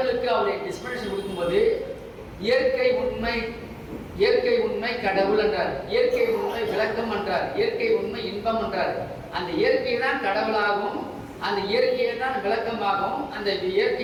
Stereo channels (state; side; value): identical; both; correlation 1.00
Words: அவருடைய டிஸ்பிளேஷன் கொடுக்கும்போது இயற்கை உண்மை கடவுள் என்றார், இயற்கை உண்மை விளக்கம் என்றார், இயற்கை உண்மை இன்பம் என்றார். அந்த இயற்கை தான் கடவுளாகவும் அந்த இயற்கையை தான் விளக்கமாகவும் அந்த